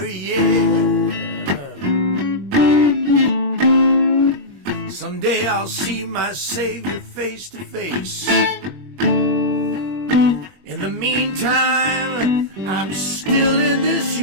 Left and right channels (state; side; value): late; left; 21 ms